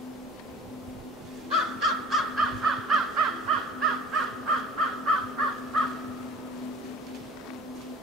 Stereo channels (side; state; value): both; normal; correlation 0.44